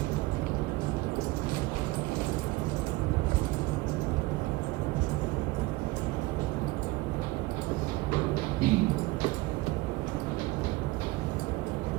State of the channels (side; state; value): left; quieter; 20.7 dB